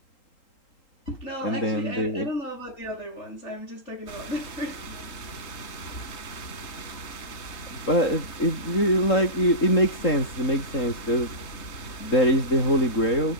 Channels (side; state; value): right; late; 3.8 ms